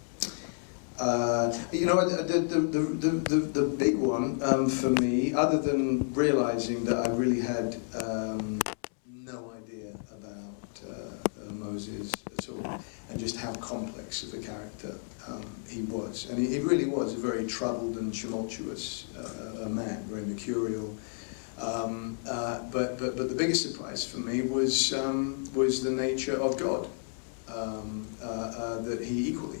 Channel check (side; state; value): right; silent; 57 dB below the other